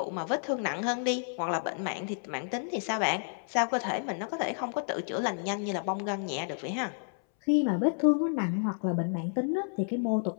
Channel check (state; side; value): silent; right; 57 dB below the other